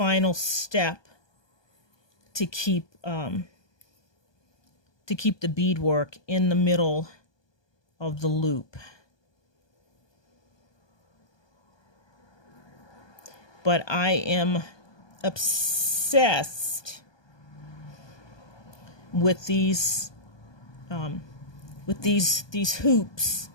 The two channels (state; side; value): late; right; 1.2 ms